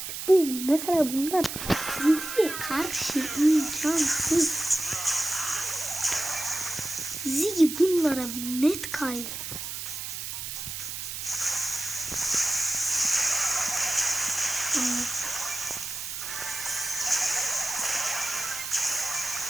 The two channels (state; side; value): noise; right; hiss, 6 dB below the sound